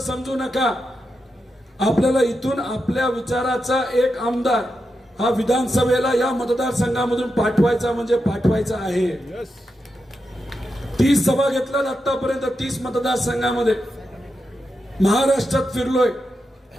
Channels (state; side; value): normal; both; correlation 0.87